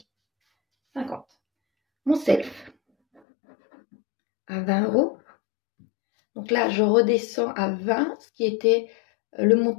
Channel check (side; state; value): right; drops out; at 3.2 s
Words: 50. Mon self à 20 €. Donc là, je redescends à 20, ce qui était le